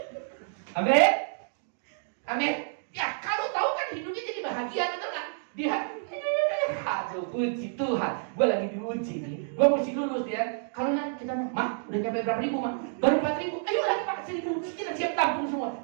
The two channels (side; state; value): left; silent; digital silence